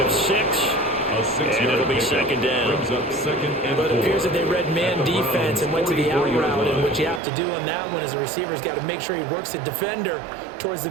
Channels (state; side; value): drops out; left; at 7.2 s